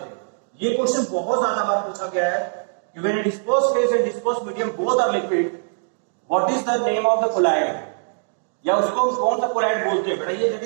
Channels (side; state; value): left; silent; digital silence